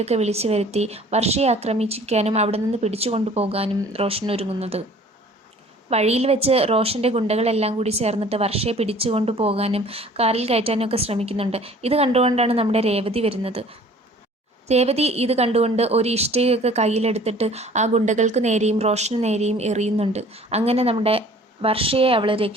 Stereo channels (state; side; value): normal; both; correlation 0.50